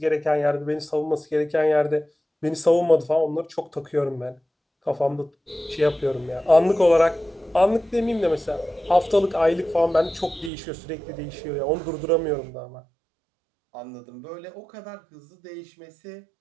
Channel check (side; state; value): left; drops out; at 10.5 s